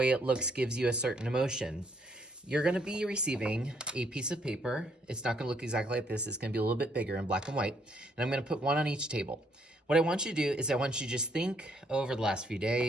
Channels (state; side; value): normal; both; correlation 0.70